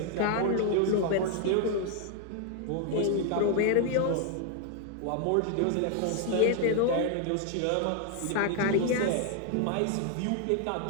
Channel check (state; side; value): different; both; correlation 0.00